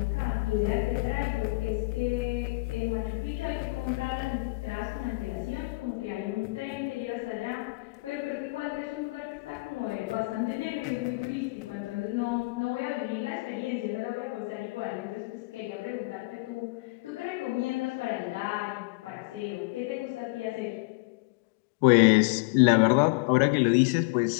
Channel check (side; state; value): right; quieter; 26.5 dB